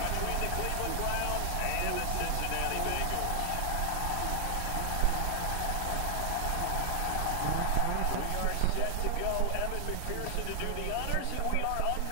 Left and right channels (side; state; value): both; different; correlation 0.00